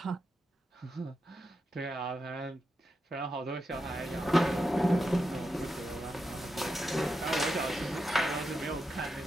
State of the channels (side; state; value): both; normal; correlation 0.87